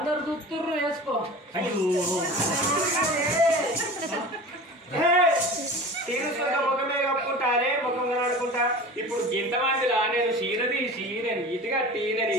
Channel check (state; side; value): normal; both; correlation 0.36